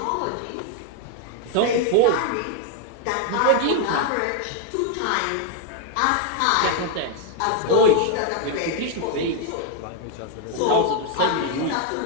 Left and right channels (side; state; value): both; different; correlation 0.01